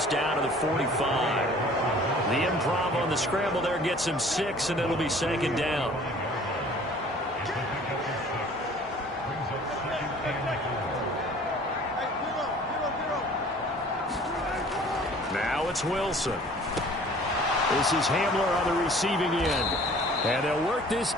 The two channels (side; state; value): both; normal; correlation 0.50